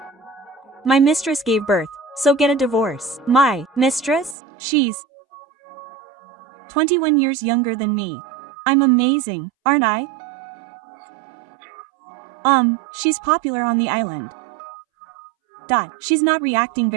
My mistress gave birth, so get a divorce. My mistress? She's 21 years younger than me. I'm amazing, aren't I? She's popular on the island. She's not reacting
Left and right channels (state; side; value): drops out; left; at 4.4 s